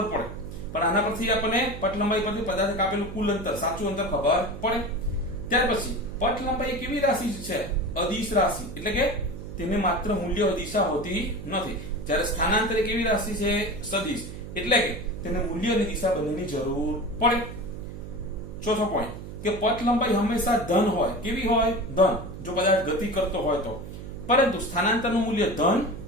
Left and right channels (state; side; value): noise; right; hum, 11 dB below the sound